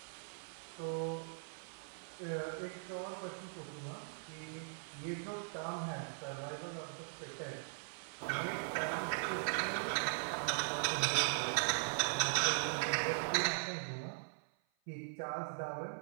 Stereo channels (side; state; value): left; silent; 51 dB below the other